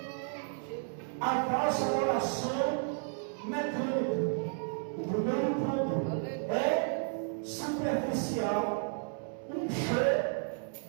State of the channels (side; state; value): left; silent; 56 dB below the other